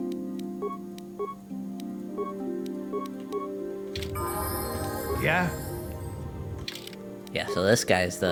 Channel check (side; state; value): both; identical; correlation 1.00